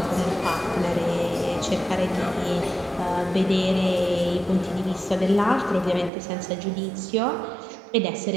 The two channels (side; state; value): left; drops out; at 6.1 s